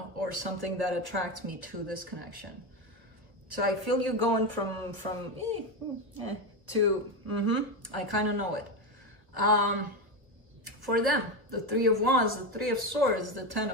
or something that attracts me to this connection. So I feel you going from to, I kind of know it. For them, the Three of Wands, the Three of Swords, the Ten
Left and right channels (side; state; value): left; late; 1.2 ms